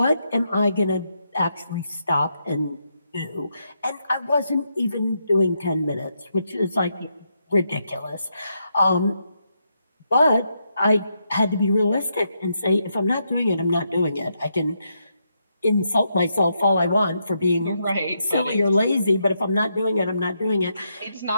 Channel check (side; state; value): both; inverted; correlation -0.81